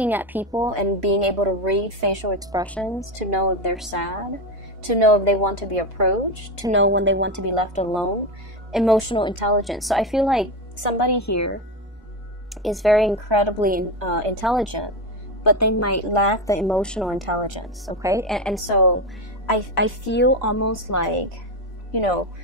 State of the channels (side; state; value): both; normal; correlation 0.16